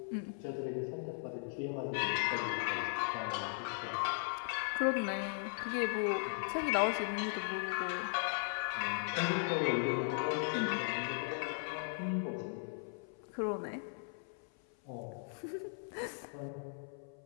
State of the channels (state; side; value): silent; right; 53 dB below the other